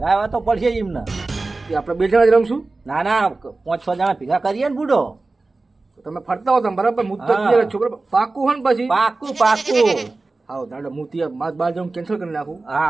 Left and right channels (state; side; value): quieter; left; 3.4 dB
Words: તો પડશે જ એમને એ આપણે બે જણા જ રમશું ના ના 5-6 જણા ભેગા કરીએ ને બુડો તો તમે ફરતા હો તમે બરાબર હું તો હા. છોકરા પાકું હોય ને પછી પાકું પાકું હા દાદા હું ત્યાં માર બહાર જવાનું કેન્સલ કરી નાખું હા